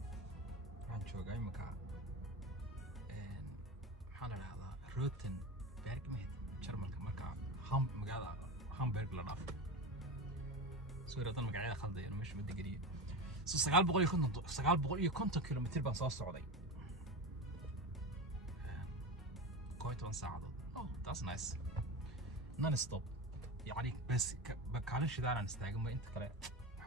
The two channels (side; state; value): both; normal; correlation 0.24